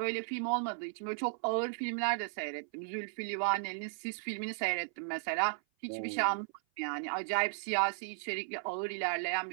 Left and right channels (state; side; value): silent; left; 54 dB below the other